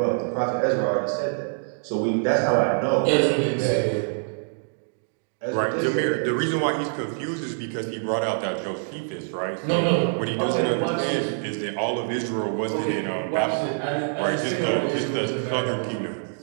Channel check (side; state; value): left; silent; digital silence